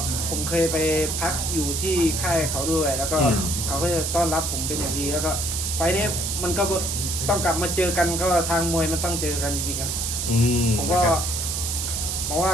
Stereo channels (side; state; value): right; noise; hiss, 2 dB below the sound